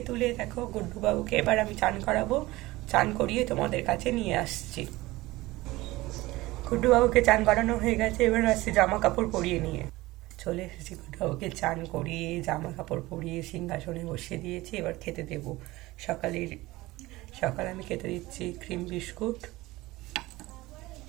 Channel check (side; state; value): left; quieter; 19.3 dB